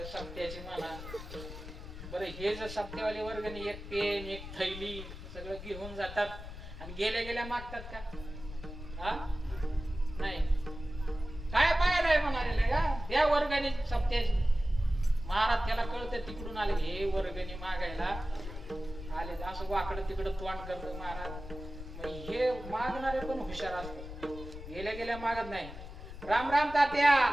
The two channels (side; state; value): left; noise; rumble, 11 dB below the sound